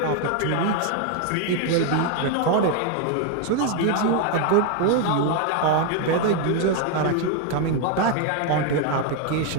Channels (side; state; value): both; different; correlation 0.01